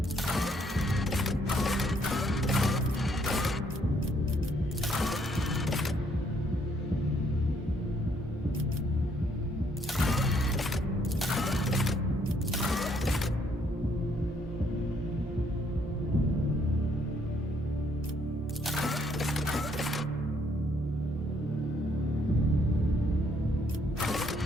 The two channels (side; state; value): both; normal; correlation 0.69